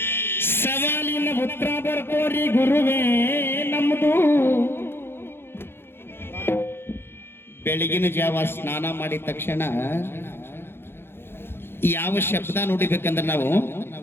ಸವಾಲಿನ ಉತ್ತರ ಬರ್ಕೋರಿ ಗುರುವೇ ನಮ್ಮದು. ಬೆಳಗಿನ ಜಾವ ಸ್ನಾನ ಮಾಡಿದ ತಕ್ಷಣ ಯಾವ ಶಬ್ದ ನೋಡಿಬೇಕಂದ್ರೆ ನಾವು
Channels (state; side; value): late; right; 0.11 ms